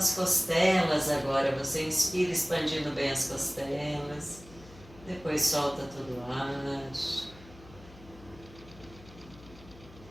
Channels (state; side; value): noise; left; hum, 20 dB below the sound